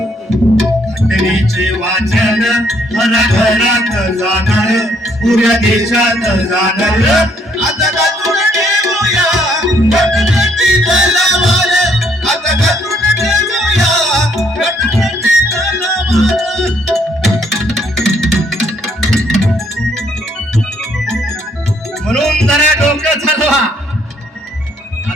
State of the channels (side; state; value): both; normal; correlation 0.68